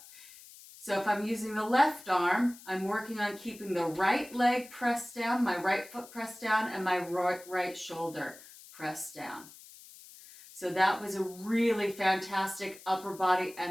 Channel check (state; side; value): noise; left; hiss, 19 dB below the sound